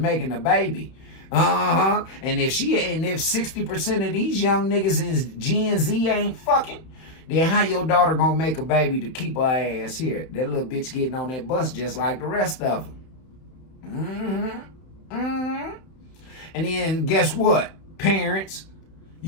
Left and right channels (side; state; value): right; late; 31 ms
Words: a baby. And if 60% of these young niggas in Gen Z ain't fucking, then how your daughter gonna make a baby to keep her ass here? That little bitch getting on that bus just like the rest of them. And then guess what, parents?